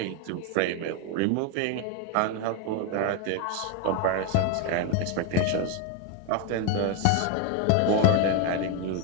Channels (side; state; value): both; different; correlation 0.01